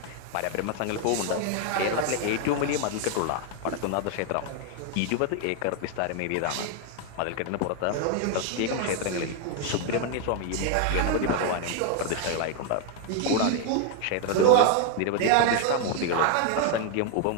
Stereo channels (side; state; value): both; different; correlation 0.01